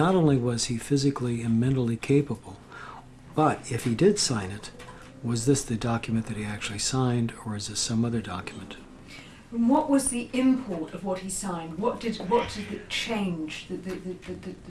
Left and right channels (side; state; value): both; identical; correlation 1.00